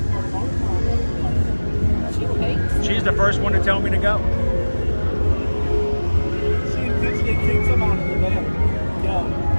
She's the first one to tell me to go. She intentionally kicks him out of the bed. Go.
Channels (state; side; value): inverted; both; correlation -1.00